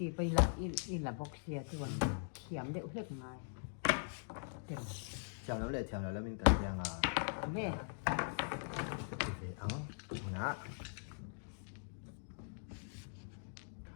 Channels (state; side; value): silent; right; digital silence